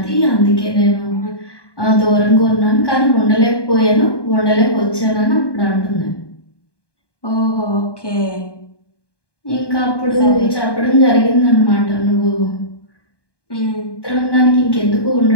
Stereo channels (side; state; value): right; late; 1.2 ms